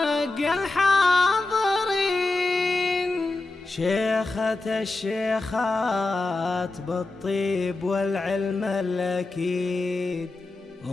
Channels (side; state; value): right; quieter; 3.1 dB